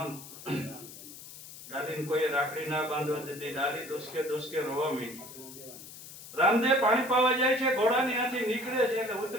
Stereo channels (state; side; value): noise; left; hiss, 15 dB below the sound